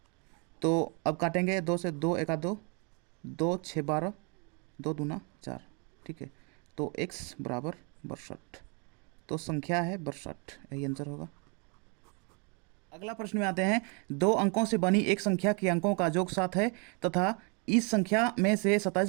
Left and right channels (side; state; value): left; quieter; 34.5 dB